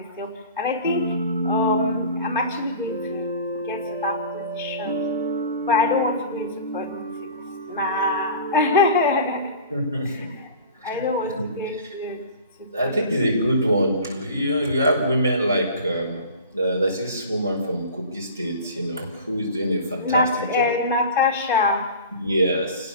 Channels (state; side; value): inverted; both; correlation -0.39